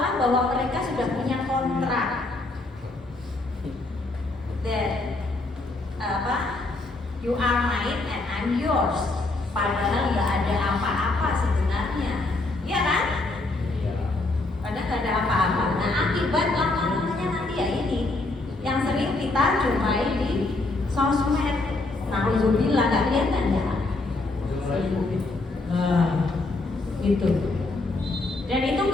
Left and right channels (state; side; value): quieter; right; 3.1 dB